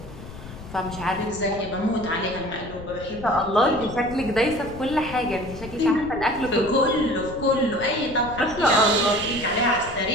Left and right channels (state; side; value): noise; left; rumble, 14 dB below the sound